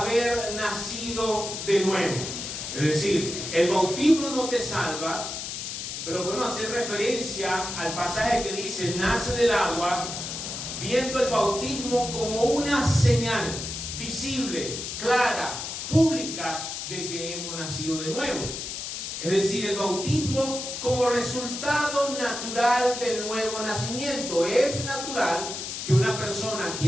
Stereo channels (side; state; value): left; noise; hiss, 6 dB below the sound